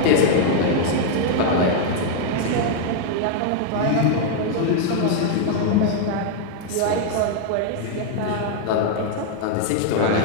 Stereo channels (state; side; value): different; both; correlation 0.00